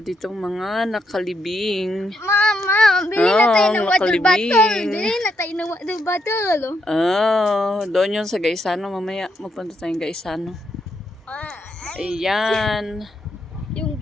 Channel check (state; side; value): normal; both; correlation 0.79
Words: ditong mga nakalibing. Mama, bili na tayo ng water nakalibing. bottle. Bili na tayo ng water bottle. Doon yun sa Gaisano. Mamaya magpunta tayong Gaisano. Ayan. Yung